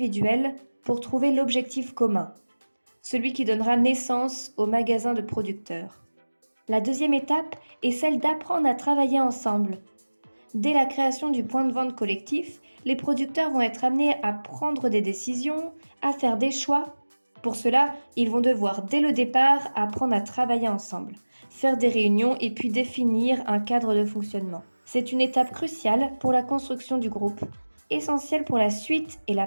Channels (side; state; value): both; inverted; correlation -1.00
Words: pour trouver l'objectif commun, celui qui donnera naissance au magasin de producteurs. La deuxième étape est celle d'apprendre à travailler ensemble. Dès la création du point de vente collectif, les producteurs vont être amenés à prendre des décisions, à faire des choix. Pour cela, ils vont devoir dès le départ apprendre à travailler ensemble, faire des réunions et puis définir un cadre de fonctionnement. C'est une étape cruciale pour la construction du groupe, essentielle pour la suite et la